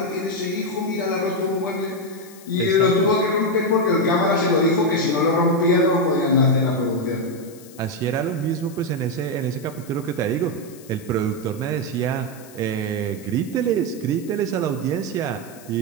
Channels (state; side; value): noise; left; hiss, 21 dB below the sound